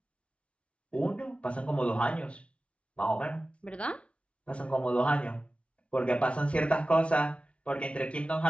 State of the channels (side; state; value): right; late; 0.061 ms